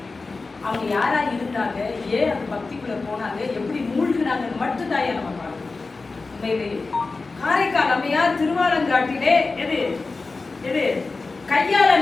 அவங்க யாரா இருந்தாங்க, ஏன் அந்த பக்திக்குள்ள போனாங்க, எப்படி மூழ்கினாங்கன்னு மட்டும்தான் நம்ம பார்க்கணும். உண்மையிலேயே காரைக்கால் அம்மையார் திருவாலங்காட்டிலே எது கையால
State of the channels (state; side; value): quieter; right; 3.8 dB